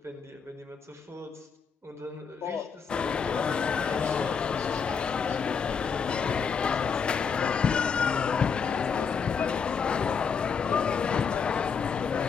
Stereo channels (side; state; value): right; quieter; 6.1 dB